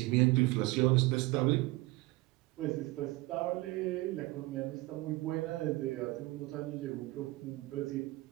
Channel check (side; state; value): left; quieter; 20.9 dB